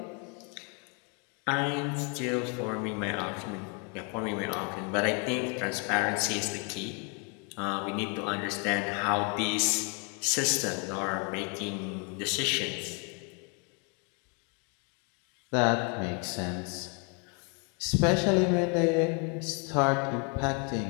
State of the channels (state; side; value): quieter; right; 36.2 dB